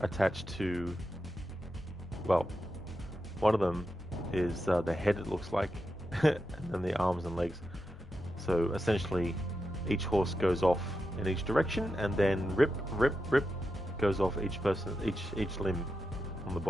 to, well, one of them is the head, it looks like, and then the arms and legs. So essentially each horse goes off in each direction, and then rip goes off each person, each limb on the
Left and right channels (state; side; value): normal; both; correlation 0.88